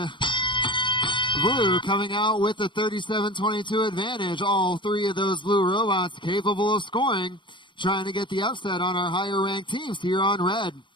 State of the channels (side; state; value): right; late; 0.23 ms